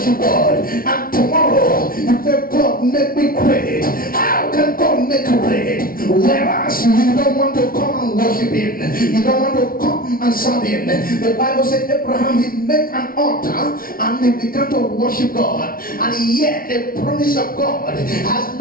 God. And tomorrow, you say, God, make me great. How can God make you great? Whereas you don't want to come and worship him. You don't want to come and serve him. The Bible said Abraham, he made an altar and he began to worship God. And yet the promise of God has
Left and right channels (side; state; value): right; late; 0.43 ms